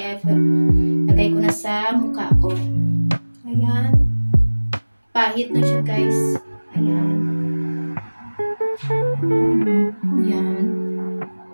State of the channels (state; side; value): inverted; both; correlation -1.00